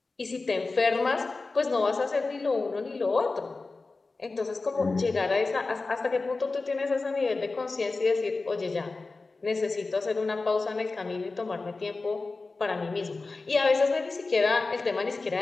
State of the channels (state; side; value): quieter; right; 3.7 dB